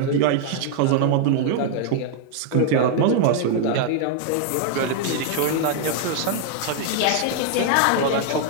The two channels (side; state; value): both; different; correlation 0.00